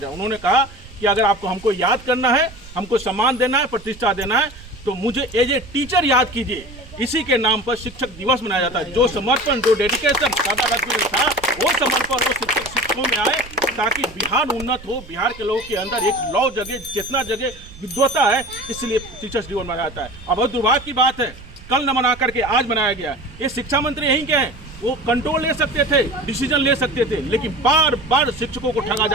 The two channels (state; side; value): noise; right; rumble, 18 dB below the sound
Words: उन्होंने कहा कि अगर आपको हमको याद करना है, हमको सम्मान देना है, प्रतिष्ठा देना है, तो मुझे एज ए टीचर याद कीजिए। इसी के नाम पर शिक्षक दिवस मनाया जाता है। जो समर्पण, जो डेडिकेशन दादा था, वो समर्पण वो शिक्षकों में आए ताकि बिहार उन्नत हो, बिहार के लोगों के अंदर एक लौ जगह, चेतना जगह, विद्वता है, इसलिए टीचर्स दिवस मनाया जाता है। अब बहुत दुर्भाग्य की बात है, कल न मना करके आज मनाया गया। ये शिक्षा मंत्री यहीं के हैं, वो कंट्रोल ले सकते थे, डिसीजन ले सकते थे, लेकिन बार बार शिक्षकों को ठगा